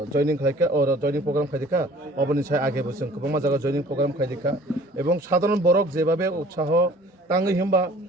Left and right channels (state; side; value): normal; both; correlation 0.50